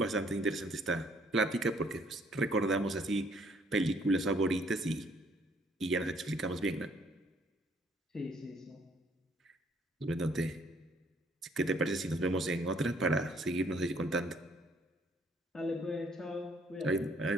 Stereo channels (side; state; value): both; normal; correlation 0.64